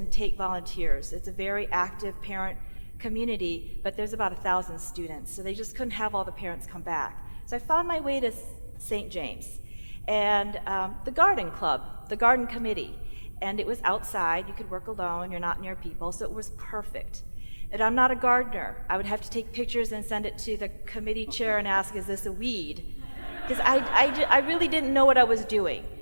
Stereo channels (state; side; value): inverted; both; correlation -1.00